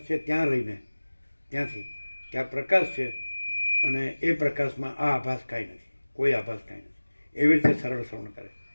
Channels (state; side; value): inverted; both; correlation -1.00